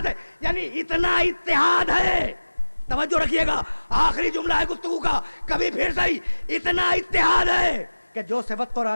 ہے. یعنی اتنا اتحاد ہے. توجہ رکھیے گا, آخری جملہ ہے گفتگو کا, کبھی پھر صحیح. اتنا اتحاد ہے کہ جو صفت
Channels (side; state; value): both; inverted; correlation -1.00